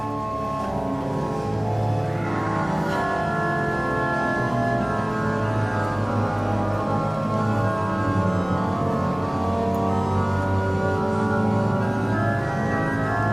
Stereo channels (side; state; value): right; noise; rumble, 26 dB below the sound